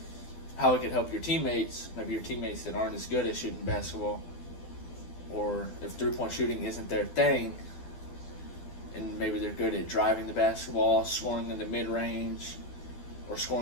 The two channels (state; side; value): late; right; 12 ms